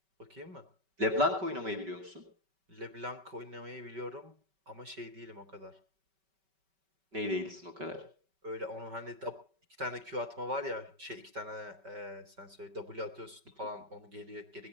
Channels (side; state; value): left; late; 5.2 ms